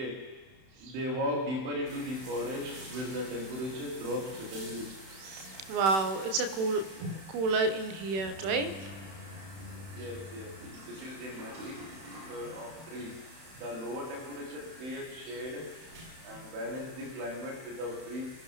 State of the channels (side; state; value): left; late; 31 ms